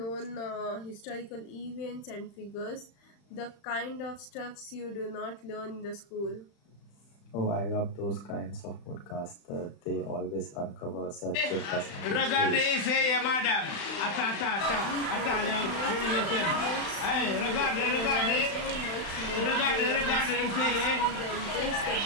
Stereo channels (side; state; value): right; late; 35 ms